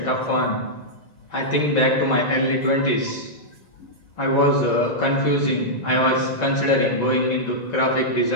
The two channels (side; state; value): right; late; 1.9 ms